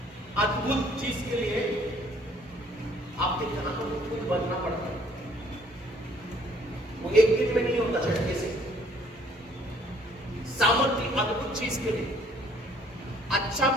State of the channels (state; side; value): normal; both; correlation 0.60